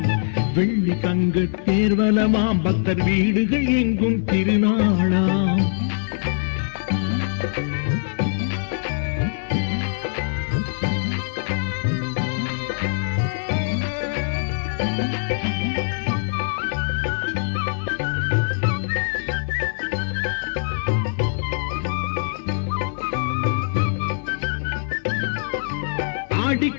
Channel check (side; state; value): right; silent; digital silence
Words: வெள்ளி தங்க தேர்வலமாம் பக்தர் வீடுகள் எங்கும் திருநாளாம் ஆடி